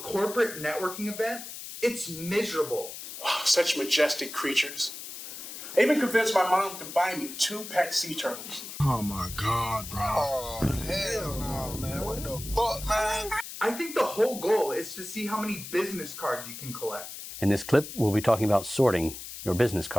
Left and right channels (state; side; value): noise; left; hiss, 10 dB below the sound